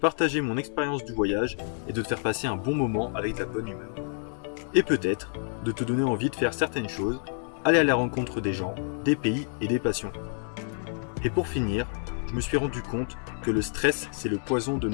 mon expérience du voyage et de te faire passer un bon moment avec de la bonne humeur. Et peut-être de te donner envie de faire certaines choses, aller à la rencontre des gens, des pays et des passions. Et pour finir, je me suis rendu compte que le stress, c'est le poison de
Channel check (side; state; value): right; silent; 59 dB below the other